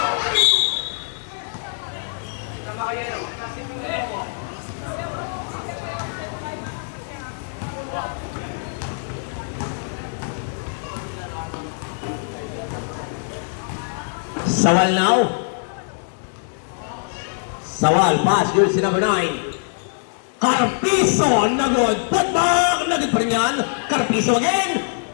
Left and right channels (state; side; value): silent; right; digital silence